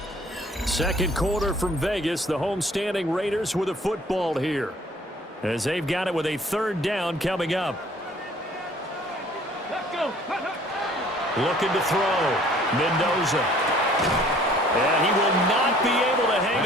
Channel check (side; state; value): both; normal; correlation 0.55